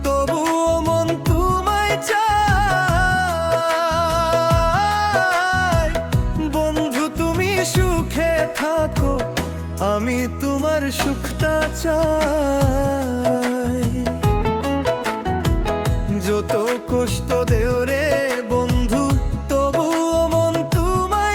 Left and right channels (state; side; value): identical; both; correlation 1.00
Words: তবুও মন তোমায় চায়। বন্ধু তুমি সুখে থাকো, আমি তোমার সুখটা চাই। যত কষ্ট দেও রে বন্ধু, তবুও মন